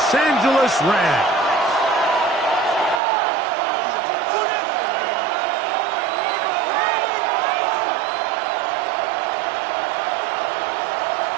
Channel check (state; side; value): drops out; left; at 3.0 s